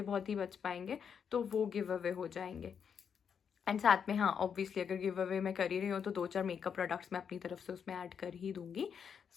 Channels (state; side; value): quieter; right; 7.2 dB